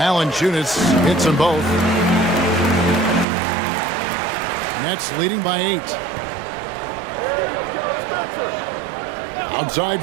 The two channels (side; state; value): left; drops out; at 3.2 s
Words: hits them both. Nets leading by 8. Outside